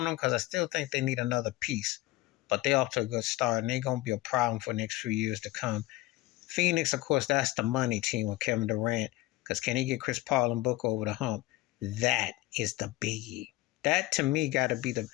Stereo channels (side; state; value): right; quieter; 18.3 dB